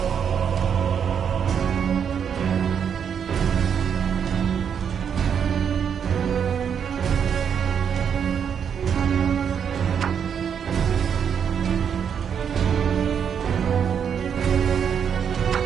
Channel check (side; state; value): left; quieter; 7.7 dB